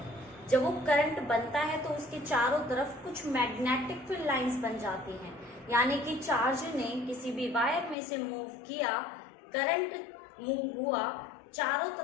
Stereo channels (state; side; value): drops out; right; at 8.0 s